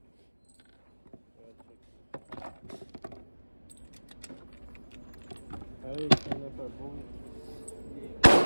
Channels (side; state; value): both; inverted; correlation -1.00